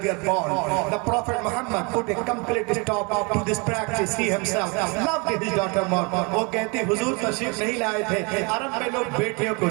were born. The Prophet Muhammad put a complete stop to this practice. He himself loved his daughter more. وہ کہتی حضور تشریف نہیں لائے تھے، عرب میں لوگ بیٹیوں کو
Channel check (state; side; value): quieter; left; 30.6 dB